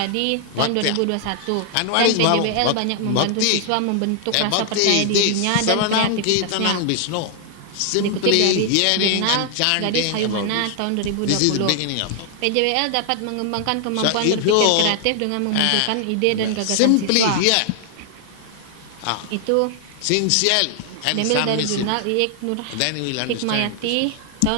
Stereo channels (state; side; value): different; both; correlation 0.00